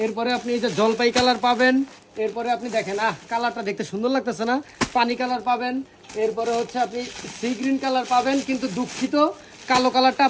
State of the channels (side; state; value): both; identical; correlation 1.00